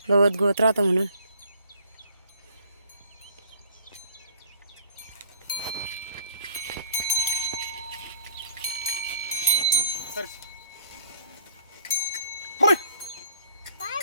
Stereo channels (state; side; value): inverted; both; correlation -0.57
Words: गवत गवत राहतं म्हणून.